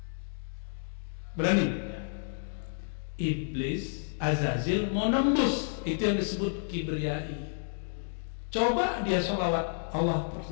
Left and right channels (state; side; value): silent; right; digital silence